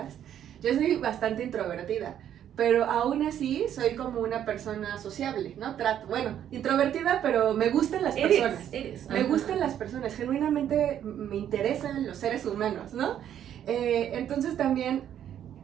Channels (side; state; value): left; quieter; 10.2 dB